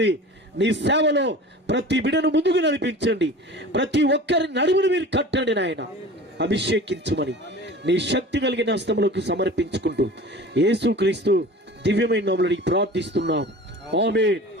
నీ సేవలో ప్రతి బిడను ముందుకు నడిపించండి. ప్రతి ఒక్కరి నడుమును మీరు కట్టండి నాయన. అభిషేకించుమని నీ శక్తి కలిగిన హస్తములకు సమర్పించుకుంటూ యేసుక్రీస్తు దివ్యమైన నామములో అడిగి ప్రార్థిస్తున్నాం. ఆమేన్.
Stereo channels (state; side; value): normal; both; correlation 0.38